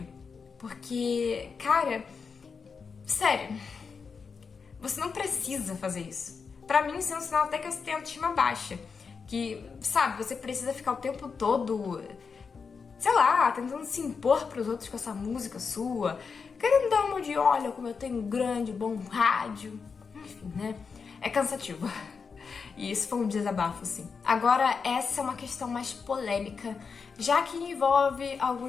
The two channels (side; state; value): right; quieter; 5.4 dB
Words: Porque, cara, sério, você não precisa fazer isso. Pra mim, isso é um sinal até que você tem autoestima baixa. Que, sabe, você precisa ficar o tempo todo, sei lá, tentando se impor pros outros com essa música sua. Querendo dar uma de, olha como eu tenho um grande, bom rádio. Enfim, né? É cansativo. E isso foi um desabafo, sim. Agora, essa é uma questão mais polêmica, já que envolve